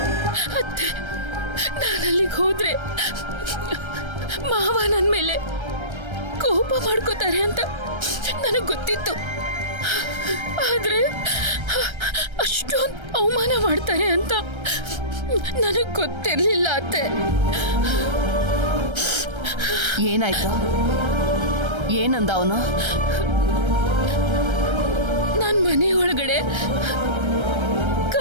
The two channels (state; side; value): late; left; 1.3 ms